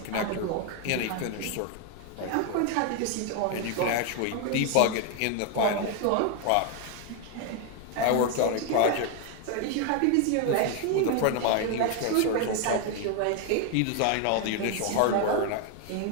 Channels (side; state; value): both; different; correlation 0.01